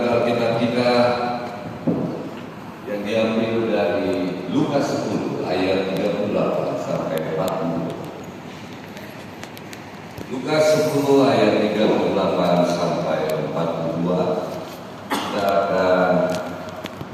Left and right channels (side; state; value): both; identical; correlation 1.00